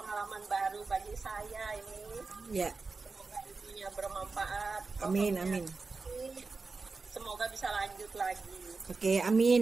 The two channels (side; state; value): left; quieter; 4.1 dB